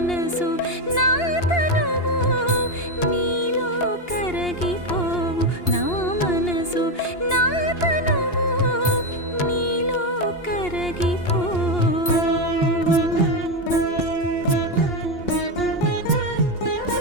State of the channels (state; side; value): late; right; 2.8 ms